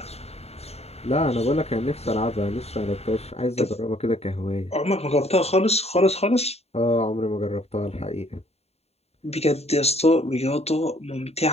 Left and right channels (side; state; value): right; late; 0.30 ms